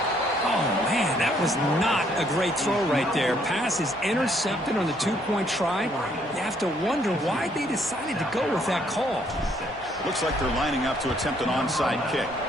Oh, man, that was not a great throw right there. Pass is intercepted on the 2-point try. You have to wonder why they decided to go with that call. Looks like they're lining up to attempt an onside kick.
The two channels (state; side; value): normal; both; correlation 0.67